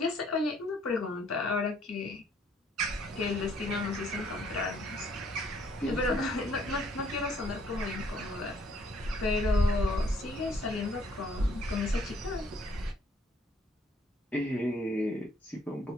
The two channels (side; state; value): both; normal; correlation 0.64